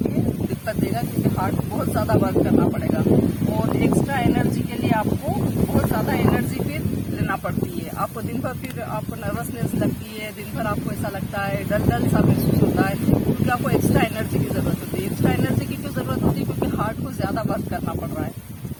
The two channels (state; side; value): identical; both; correlation 1.00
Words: दिक्कत देगा, क्योंकि हार्ट को बहुत ज्यादा वर्क करना पड़ेगा और एक्स्ट्रा एनर्जी के लिए आपको बहुत ज्यादा एनर्जी फिर लेना पड़ती है। आपको दिन भर फिर आपको नर्वसनेस लगती है, दिन भर आपको ऐसा लगता है, डल सा महसूस होता है, क्योंकि आपको एक्स्ट्रा एनर्जी की जरूरत होती है। एक्स्ट्रा एनर्जी की क्यों जरूरत होती है, क्योंकि हार्ट को ज्यादा वर्क करना पड़ रहा